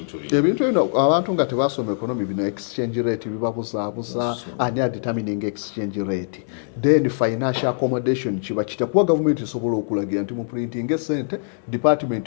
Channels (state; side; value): silent; right; digital silence